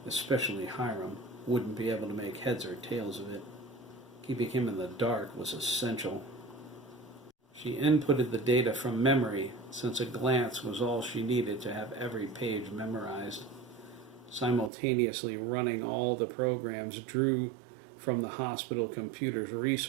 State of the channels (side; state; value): left; drops out; at 14.7 s